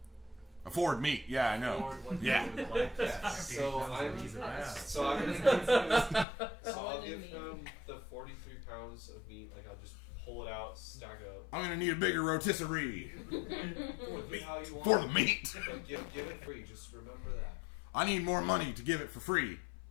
Afford meat. Yeah, I know. afford what Yeah. they would like. Yeah. So I'm He's an ass. so I'm gonna give him, so I'll Solid give meat. him the 43 pounds of meat. Like I'll just pull it out, stack up. I'm gonna need a bigger rotisserie Look at how you want for the it. meat. But give it free. Just remember that. I need more money to give it for free.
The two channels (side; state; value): right; drops out; at 6.2 s